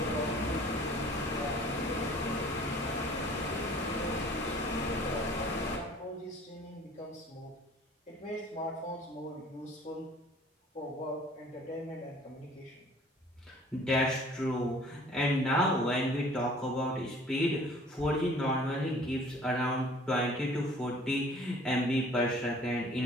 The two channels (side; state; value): both; normal; correlation 0.51